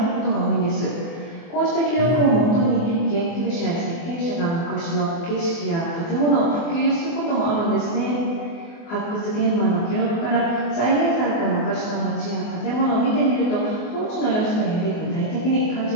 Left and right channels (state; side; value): late; right; 24 ms